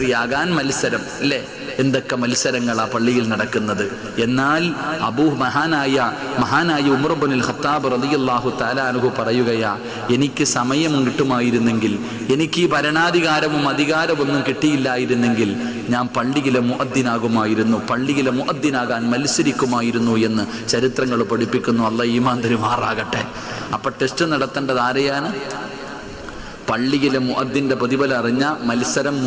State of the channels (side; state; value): both; identical; correlation 1.00